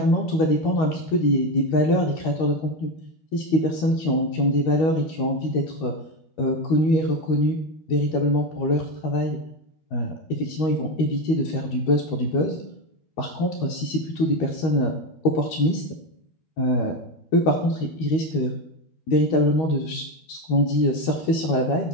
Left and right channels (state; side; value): late; right; 13 ms